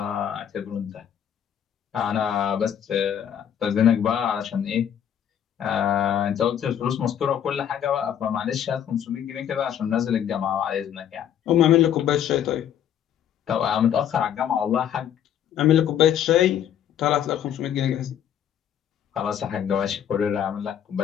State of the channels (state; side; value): quieter; right; 9.6 dB